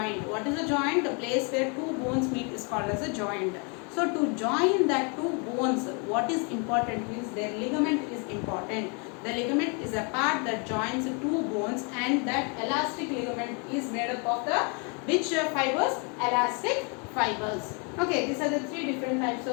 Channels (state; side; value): quieter; right; 35.2 dB